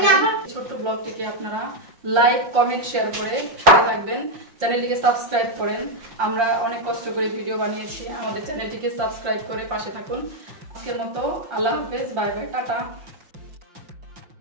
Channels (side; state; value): left; late; 5.7 ms